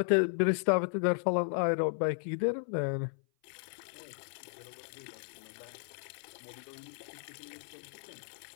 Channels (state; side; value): silent; right; 55 dB below the other